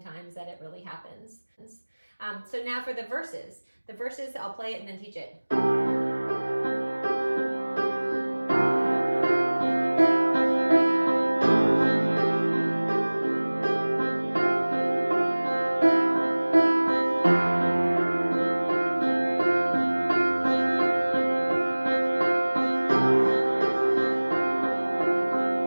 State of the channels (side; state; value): both; inverted; correlation -1.00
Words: that it really happens. So now for the verses. The verses, I'll play it and then teach it.